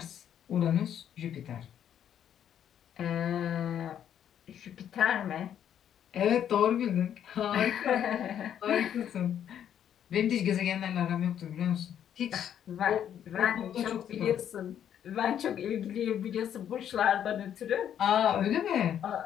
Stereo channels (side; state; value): right; quieter; 9.6 dB